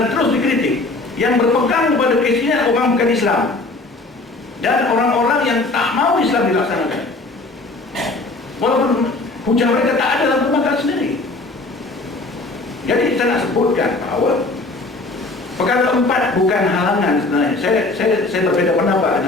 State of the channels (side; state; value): right; quieter; 3.2 dB